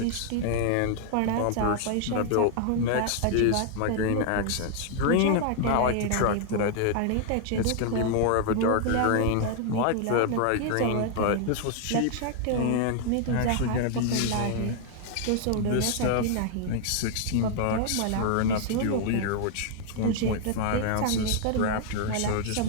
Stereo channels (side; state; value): both; different; correlation 0.00